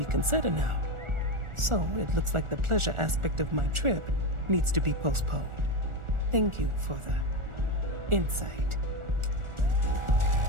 now. So it looks like the pleasure aspect of my trip needs to be postponed. Thank you for the insight.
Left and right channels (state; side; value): late; left; 1.4 ms